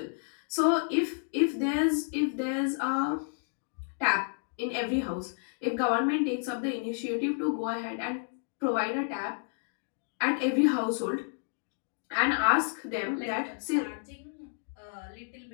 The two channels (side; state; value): right; silent; digital silence